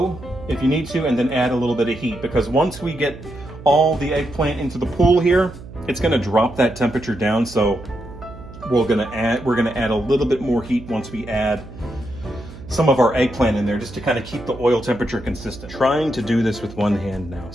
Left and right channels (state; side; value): noise; right; hum, 16 dB below the sound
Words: if you need to, and then add a little bit of heat, because once we get all the eggplant into the pool here it's going to drop that temperature down. So we're going to add a little bit more heat once we add some of our eggplant in there, just to kind of keep the oil temperature consistent. Trying to do this with one hand now.